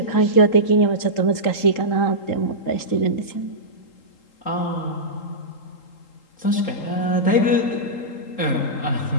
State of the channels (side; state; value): right; late; 3.8 ms